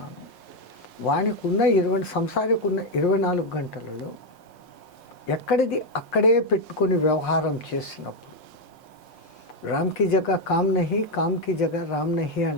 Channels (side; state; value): right; late; 5.6 ms